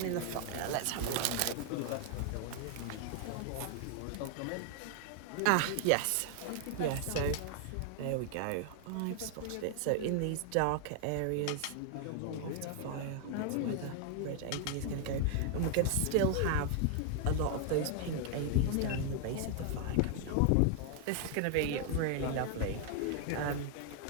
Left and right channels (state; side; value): different; both; correlation 0.00